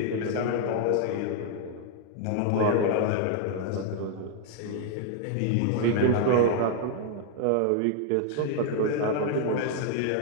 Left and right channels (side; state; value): both; different; correlation 0.00